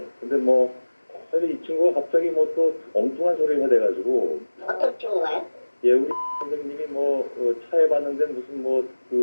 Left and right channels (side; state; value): both; inverted; correlation -1.00